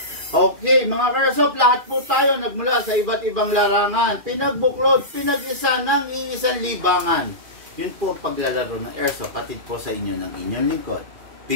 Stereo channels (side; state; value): left; late; 2.4 ms